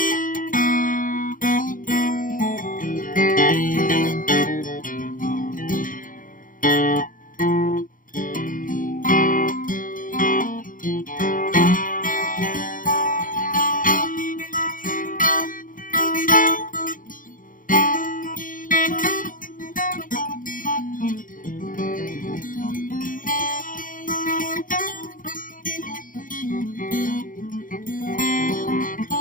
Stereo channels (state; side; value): late; right; 0.39 ms